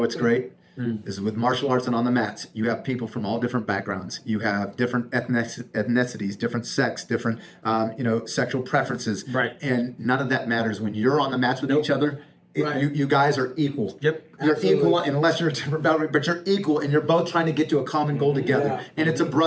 great? is with martial arts and on the mats, you have people from all different backgrounds. You have different ethnicities, different sex, different sexual preferences. Right. And none of that matters when you're on the mats with each other. You guys are equal. Yep. You're Absolutely. equal unless you're a different boundary, but you're equal and you're both trying to get to a common goal together. Yeah. And it's a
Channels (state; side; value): identical; both; correlation 1.00